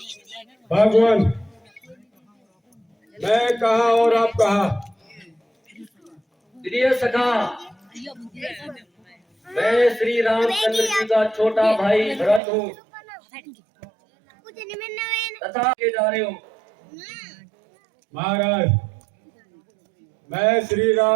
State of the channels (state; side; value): drops out; left; at 12.4 s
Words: भगवान, मैं कहा और आप कहा? प्रिय सखा, मैं श्री रामचंद्र जी का छोटा भाई भरत हूँ तथा के जा रहे हो। महाराज, मैं श्री